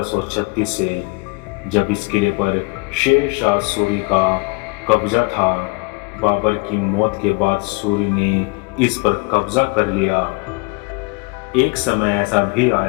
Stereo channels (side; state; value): right; quieter; 27.6 dB